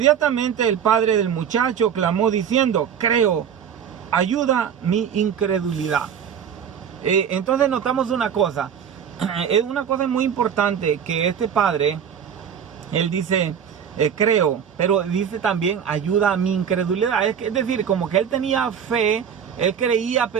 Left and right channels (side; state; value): left; quieter; 8.1 dB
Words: el padre del muchacho clamó diciendo, creo, ayuda mi incredulidad. Entonces notamos una cosa, es una cosa muy importante que este padre, él dice, creo, pero dice también, ayuda a mi incredulidad. Es decir, como que él tenía fe, él creía,